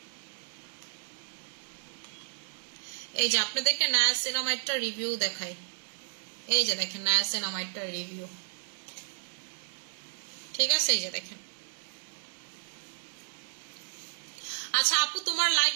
এই যে আপনাদেরকে নায়াসিনামাইডটা রিভিউ দেখাই। এই যে দেখেন নায়াসিনামাইডটা রিভিউ, ঠিক আছে? এই যে দেখেন। আচ্ছা আপু তোমার লাইভ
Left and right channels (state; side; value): silent; left; digital silence